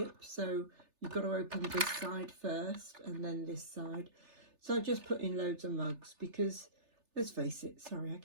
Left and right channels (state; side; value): late; left; 3.3 ms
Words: so you've got to open this side first and then this side. So I just put in loads of mugs because, let's face it, sorry, I